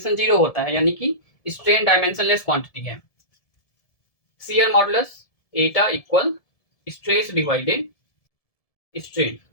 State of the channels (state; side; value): late; right; 1.7 ms